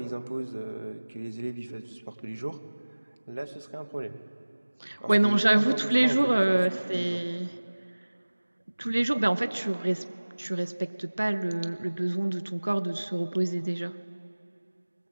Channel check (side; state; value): both; inverted; correlation -1.00